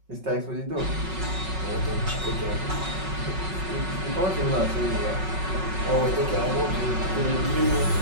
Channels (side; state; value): left; late; 5.4 ms